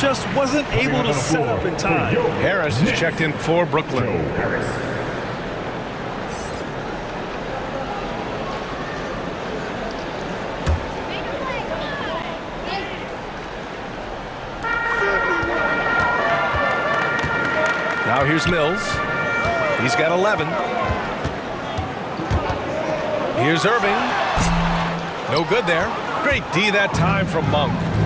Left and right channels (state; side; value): identical; both; correlation 1.00